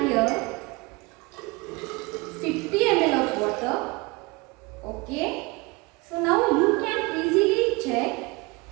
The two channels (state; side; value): quieter; left; 25.1 dB